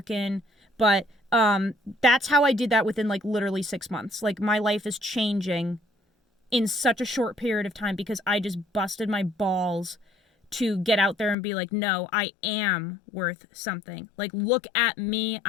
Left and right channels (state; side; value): drops out; right; at 11.4 s